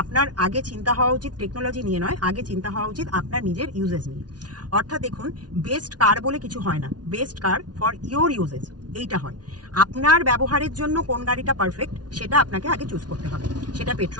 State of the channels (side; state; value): left; late; 0.69 ms